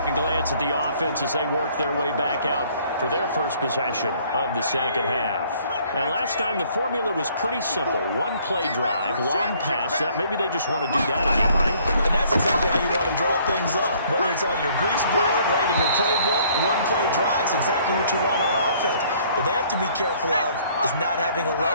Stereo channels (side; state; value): both; inverted; correlation -0.60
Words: a glance at the offense as they work their way back out for their first possession of the 2nd half. And last time the formula was pretty simple. 1-play drive, long pass. That maybe they just want to do that again, right? And that's exactly how you want to draw things up. Whether it's on your grease board, right, in your playbook, 1-play drive is exactly what you want on offense. What they have to be careful of is not having a